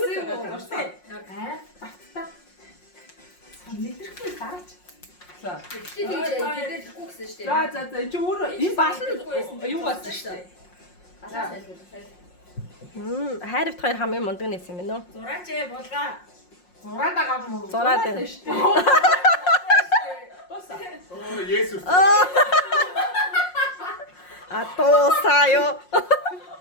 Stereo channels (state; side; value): late; right; 5.6 ms